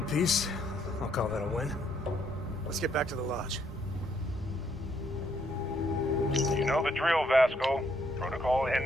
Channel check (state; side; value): normal; both; correlation 0.71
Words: piece. I'll call that a win. Let's get back to the lodge. You know the drill, Vasco. Protocol